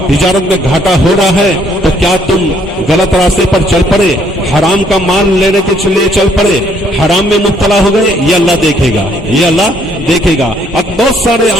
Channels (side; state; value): both; normal; correlation 0.66